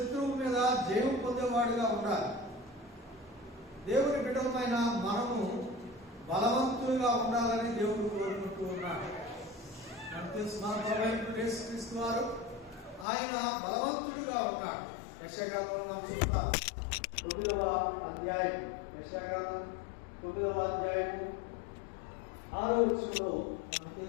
మీద జయం పొందేవాడుగా ఉండాలి. దేవుని బిడ్డలమైన మనము బలవంతులుగా ఉండాలని దేవుడు కోరుకుంటూ ఉన్నాడు. మనకు తెలుసు, మన ప్రభువైన యేసుక్రీస్తు వారు ఆయన బలవంతుడిగా ఉన్నాడు. యెషయాగ్రంథంలో మనం చూస్తాం, 9వ అధ్యాయం, యెషయాగ్రంథం 9వ అధ్యాయం 6వ వచనంలో మనకు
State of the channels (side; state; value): right; drops out; at 13.1 s